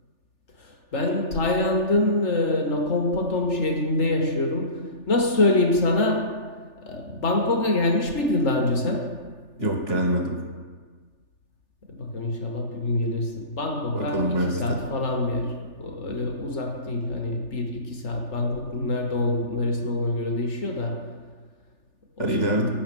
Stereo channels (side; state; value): right; late; 3.4 ms